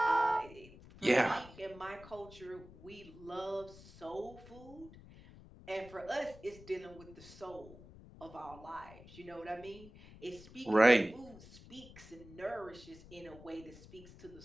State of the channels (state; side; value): noise; left; rumble, 19 dB below the sound